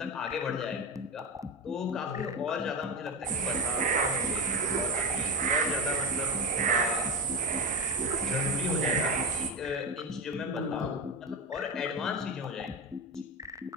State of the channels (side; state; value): both; normal; correlation 0.17